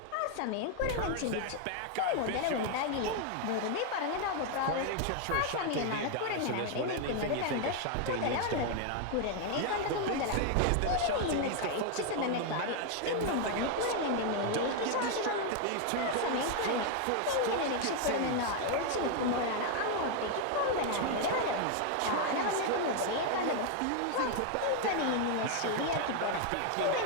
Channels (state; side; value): different; both; correlation 0.00